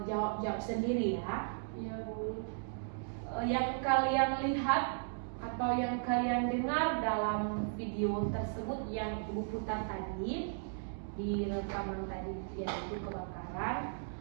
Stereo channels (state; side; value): silent; left; digital silence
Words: jawab sendiri ya. Iya, Bu. Yang kalian lihat atau yang kalian dengar dalam video tersebut yang Ibu putar tadi di rekaman tadi, yaitu kebakaran,